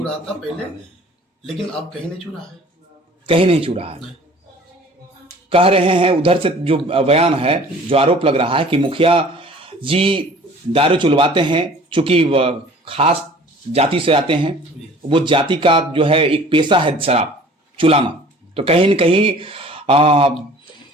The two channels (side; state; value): both; normal; correlation 0.48